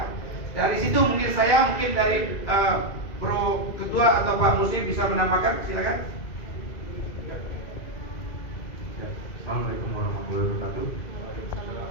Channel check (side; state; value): right; late; 2.4 ms